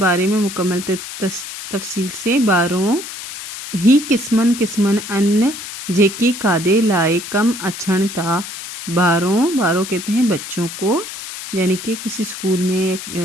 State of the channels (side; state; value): left; noise; hiss, 9 dB below the sound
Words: में मुकम्मल तफसील से। बारों ही किस्मन किस्मन अन्न जेकी कादे लाए कम अछण था। बारों कहते हैं बच्चों को, यानी कि किसी स्कूल में